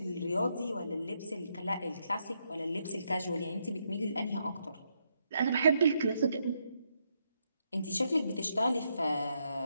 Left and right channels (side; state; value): both; inverted; correlation -0.78